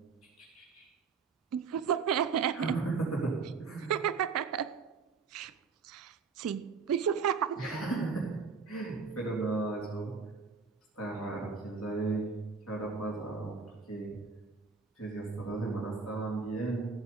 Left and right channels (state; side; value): quieter; left; 5.1 dB